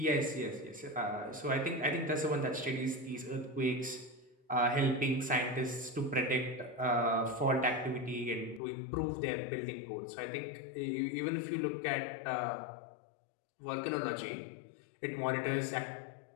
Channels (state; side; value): drops out; right; at 8.6 s